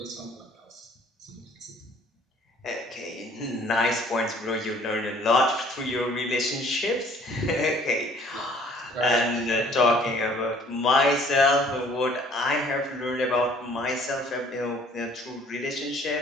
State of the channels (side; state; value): both; normal; correlation 0.56